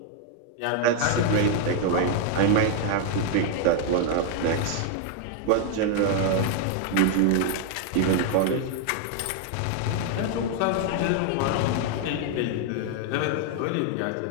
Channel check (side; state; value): both; different; correlation 0.00